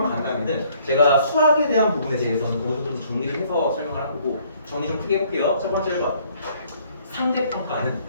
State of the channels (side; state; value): both; inverted; correlation -0.62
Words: 간단히는 제가 수학에 대한 부분에 대해서는 모두 좀 정리를 해서 설명을 하고 정리 좀 크게 해볼게요. 첫 번째 1번 상대평가는